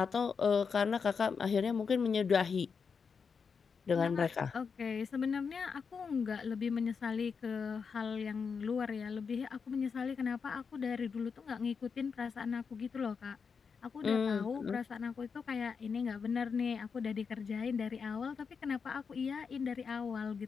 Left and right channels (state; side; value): quieter; right; 5.8 dB